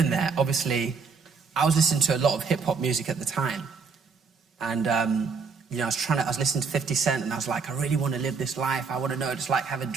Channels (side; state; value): left; quieter; 5.1 dB